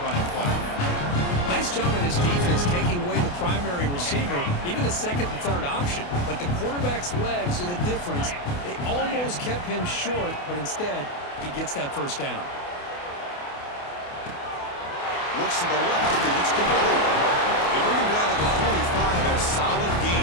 running play. Nice job of this defense taking away the primary receiver, even the second and third option. But the quarterback's legs are the difference. They almost kept him short, but instead, he gets that first down. Looks to the left, and it's complete. They bring him down to the 45 and a solid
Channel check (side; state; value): right; late; 28 ms